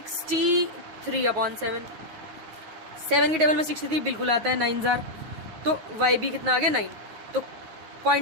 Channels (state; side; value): late; left; 9.4 ms